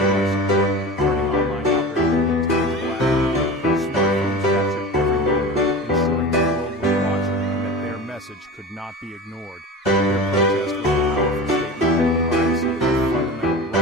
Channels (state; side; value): normal; both; correlation 0.32